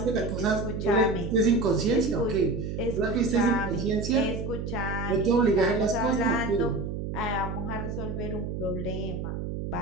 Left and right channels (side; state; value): right; noise; hum, 5 dB below the sound